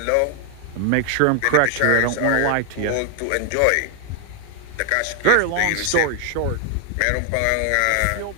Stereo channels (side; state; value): both; different; correlation 0.00